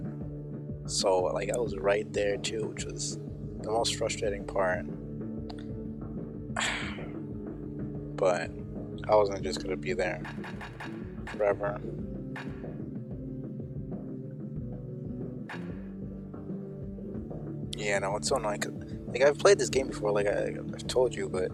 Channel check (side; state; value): both; identical; correlation 1.00